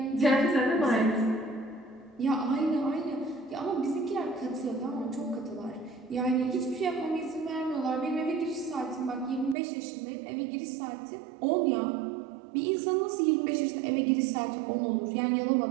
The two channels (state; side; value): drops out; left; at 9.6 s